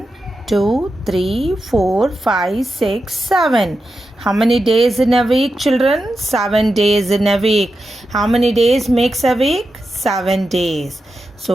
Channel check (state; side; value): normal; both; correlation 0.90